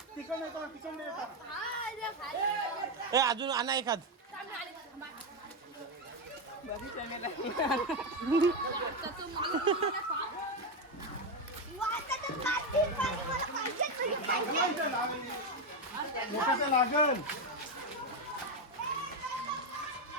अजून आणा एखाद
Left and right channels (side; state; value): both; normal; correlation 0.09